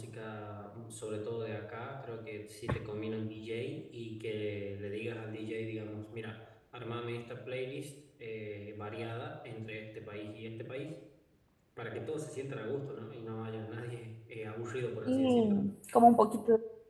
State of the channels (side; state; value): both; identical; correlation 1.00